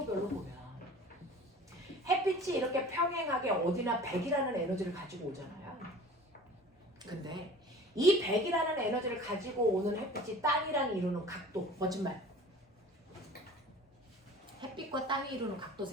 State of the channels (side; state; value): both; normal; correlation 0.43